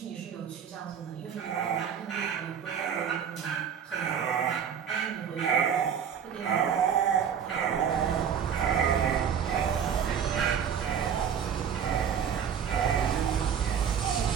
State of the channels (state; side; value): quieter; left; 7.8 dB